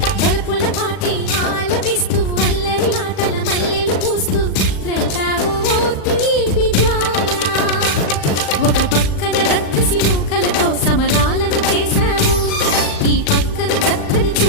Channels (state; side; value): late; right; 39 ms